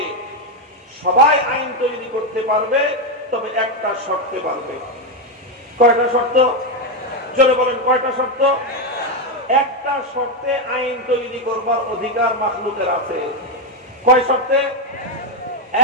সবাই আইন তৈরি করতে পারবে, তবে একটা শর্তে পারবে। কয়টা শর্ত? জোরে বলেন, কয়টা শর্ত? একটা শর্তে আইন তৈরি করবার অধিকার মাখলুকের আছে। কয় শর্তে?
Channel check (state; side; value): normal; both; correlation 0.05